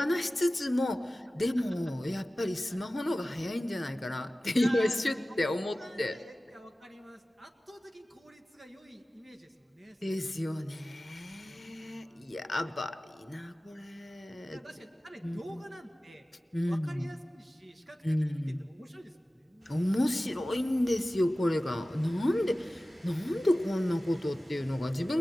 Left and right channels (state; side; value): normal; both; correlation 0.97